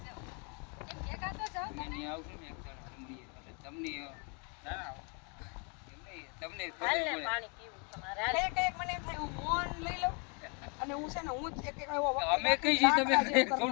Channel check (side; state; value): right; quieter; 35.9 dB